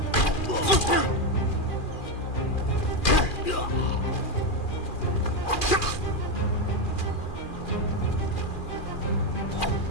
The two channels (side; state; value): right; late; 2.4 ms